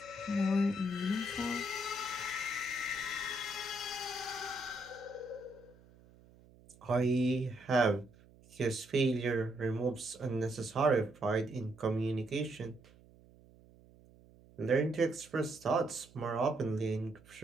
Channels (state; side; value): noise; right; hum, 25 dB below the sound